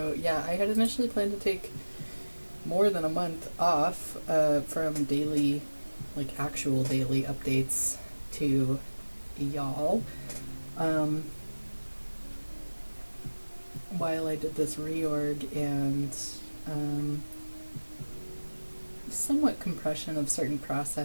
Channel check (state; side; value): inverted; both; correlation -1.00